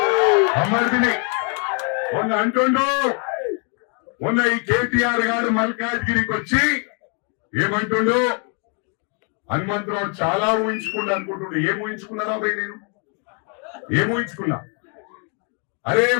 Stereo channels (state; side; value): quieter; right; 38.9 dB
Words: బొమ్మర్దిని అంటుండు. మొన్న ఈ కేటీఆర్ గారు మల్కాజ్గిరికి వచ్చి ఏమంటుండు? హనుమంతరావు చాలా ఊహించుకున్నా అనుకుంటుండే. ఏం ఊహించుకున్నారా భయ్? నేను ఏం ఊహించుకున్నా? అరే